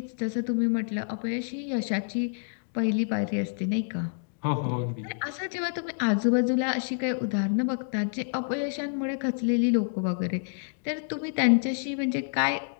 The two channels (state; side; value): silent; right; digital silence